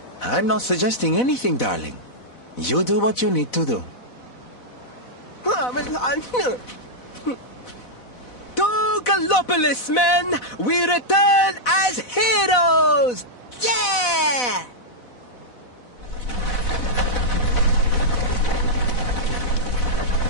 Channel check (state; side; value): late; right; 4.0 ms